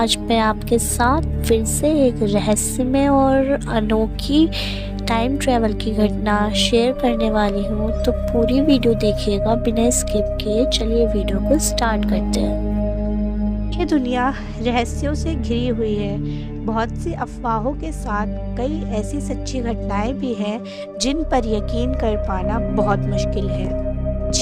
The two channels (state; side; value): identical; both; correlation 1.00